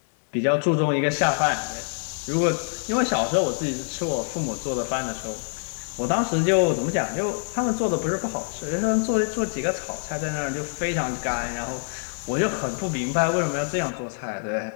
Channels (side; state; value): right; silent; digital silence